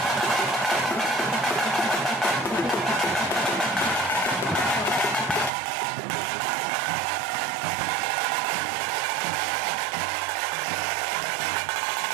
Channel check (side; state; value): left; drops out; at 5.5 s